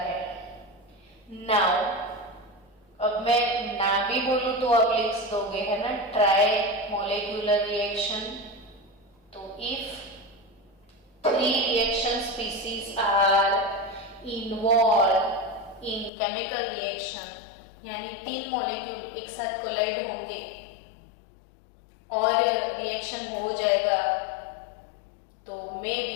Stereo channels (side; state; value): right; drops out; at 16.1 s